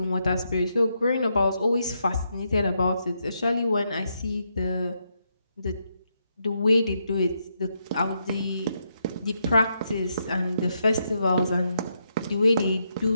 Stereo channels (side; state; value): both; inverted; correlation -0.80